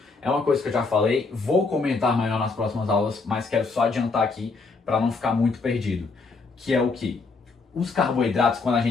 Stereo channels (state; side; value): quieter; right; 4.1 dB